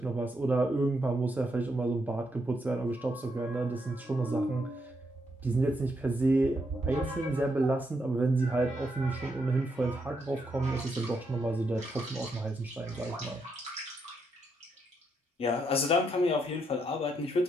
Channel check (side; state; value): both; normal; correlation 0.78